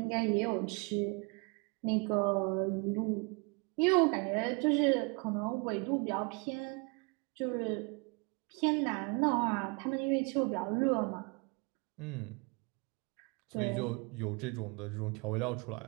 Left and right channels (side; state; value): left; quieter; 31.9 dB